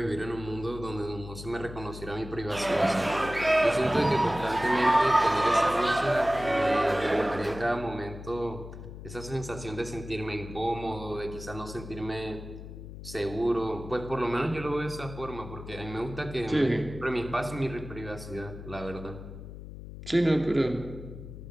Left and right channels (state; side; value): noise; left; hum, 12 dB below the sound